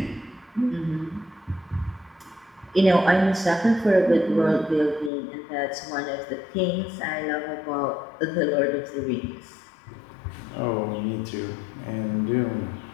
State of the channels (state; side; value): drops out; right; at 5.1 s